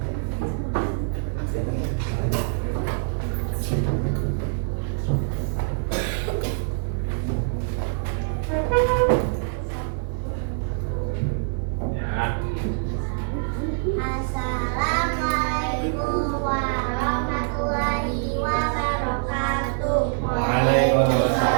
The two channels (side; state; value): left; silent; 62 dB below the other